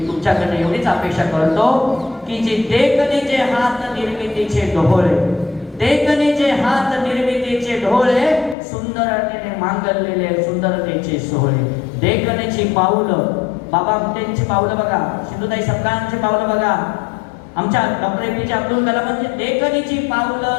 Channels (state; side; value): drops out; right; at 8.6 s